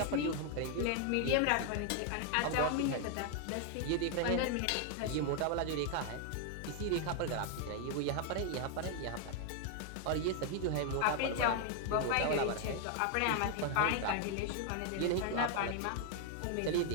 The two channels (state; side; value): different; both; correlation 0.00